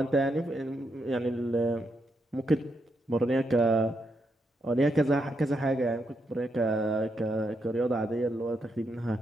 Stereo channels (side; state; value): both; normal; correlation 0.81